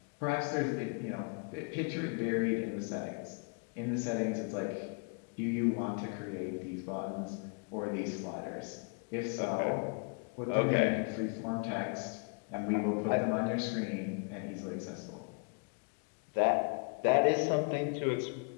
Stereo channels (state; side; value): quieter; right; 38.5 dB